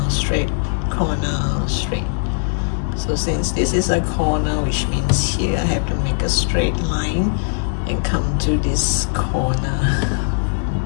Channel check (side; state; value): right; silent; digital silence